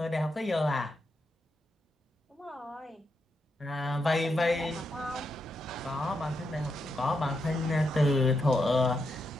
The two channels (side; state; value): both; normal; correlation 0.83